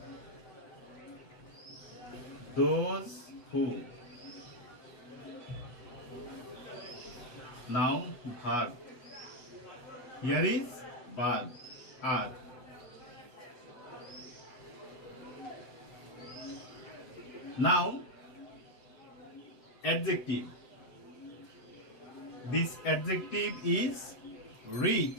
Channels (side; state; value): right; late; 7.9 ms